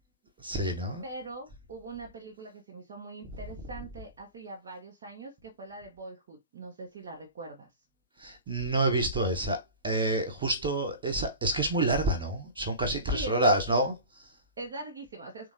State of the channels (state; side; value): inverted; both; correlation -0.34